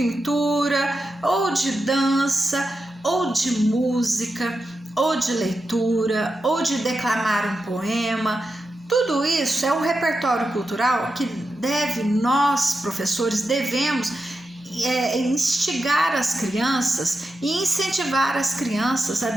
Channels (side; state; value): both; normal; correlation 0.89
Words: ou de dança, ou de música, ou de leitura, ou de declamar um poema. Tudo isso é um repertório cultural que nós, professores, devemos instigar as crianças e incentivar as crianças a